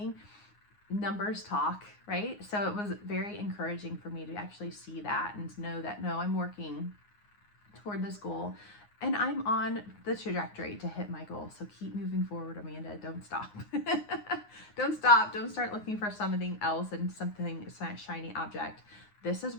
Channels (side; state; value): right; late; 9.6 ms